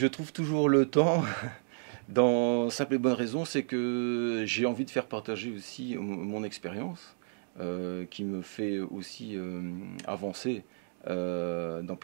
trouve toujours le temps. Dans simple et bonne raison, c'est que j'ai envie de faire partager aussi mon expérience, qui me fait aussi avancer dans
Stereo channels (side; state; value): left; silent; digital silence